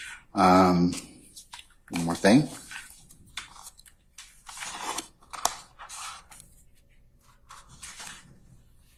one more thing.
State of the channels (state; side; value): identical; both; correlation 1.00